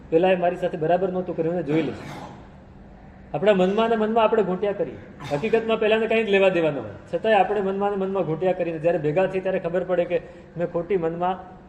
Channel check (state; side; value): identical; both; correlation 1.00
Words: પેલા મારી સાથે બરાબર નહોતું કર્યું ને જોઈ લઈશ. આપણા મનમાં ને મનમાં આપણે ઘૂંટ્યા કરીએ. હકીકતમાં પહેલાને કંઈ જ લેવા દેવા ન હોય, છતાંય આપણે મનમાં ને મનમાં ઘૂંટ્યા કરીને જ્યારે ભેગા થઈએ ત્યારે ખબર પડે કે મેં ખોટી મનમાં